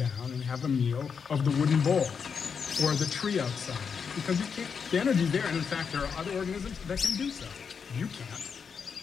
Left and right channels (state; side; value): quieter; right; 6.3 dB